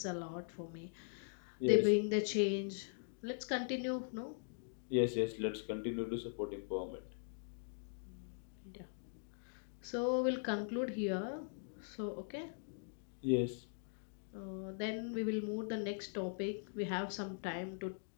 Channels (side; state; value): right; silent; digital silence